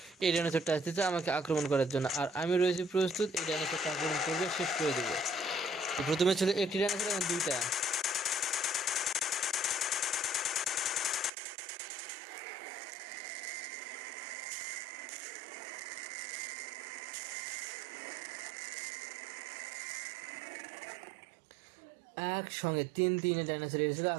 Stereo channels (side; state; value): left; drops out; at 11.3 s